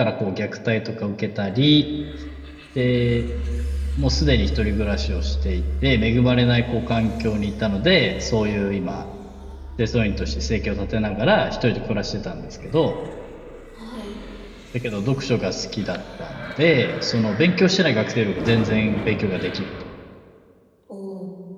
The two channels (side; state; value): both; identical; correlation 1.00